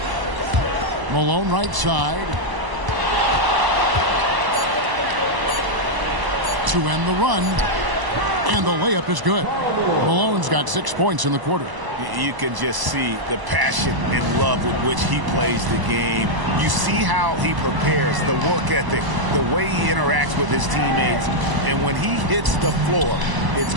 Malone right side. To end the run. And the layup is good. Malone's got 6 points in the quarter. You can just see the passion and love with which he plays the game. You see how he prepares, the work ethic, the way he interacts with his teammates. And when he hits the floor, it's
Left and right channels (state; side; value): late; left; 1.0 ms